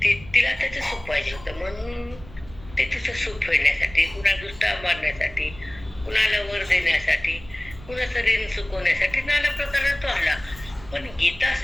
तिला त्याचं सुख पाहिजे होतं म्हणून ते तिचं सुख फेडण्यासाठी, कुणा दुष्टा मारण्यासाठी, कुणाला वर देण्यासाठी, कुणाचं ऋण चुकवण्यासाठी नाना प्रकारे तो आला. पण गीता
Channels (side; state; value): right; noise; rumble, 18 dB below the sound